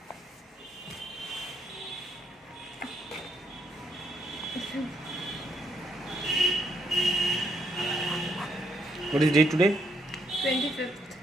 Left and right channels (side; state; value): both; normal; correlation 0.74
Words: What is date today? 25th,